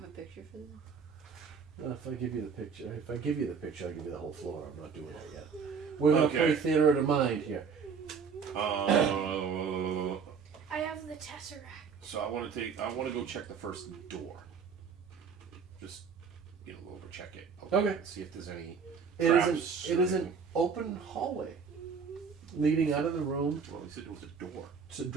a picture for this? If I give you the picture, I'll give you the whole floor. I'm not doing that yet. We're gonna Okay. play theater of the mind here. I have the tesseract. So I want to go check the first door. Just, go over check it. Okay. See if there's any It traps. is an open hallway leading out of the room. Well, he said it was a door. It's a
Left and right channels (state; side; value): quieter; left; 6.0 dB